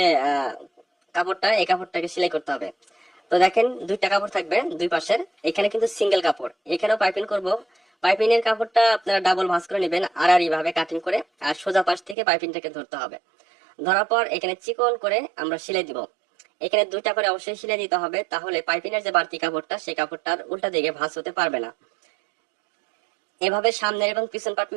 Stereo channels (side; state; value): left; drops out; at 12.2 s